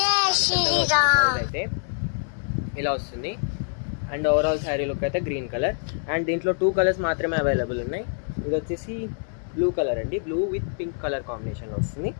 అయితే ఇలా వస్తుంది. అండ్ ఓవరాల్ శారీ లుక్ అయితే గ్రీన్ కలర్. అండ్ దీంట్లో 2 కలర్స్ మాత్రమే అవైలబుల్ ఉన్నాయి. ఇది వచ్చేసి బ్లూ కలర్ అండి, బ్లూ విత్ పింక్ కలర్ కాంబినేషన్లో వస్తుంది.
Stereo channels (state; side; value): silent; right; 60 dB below the other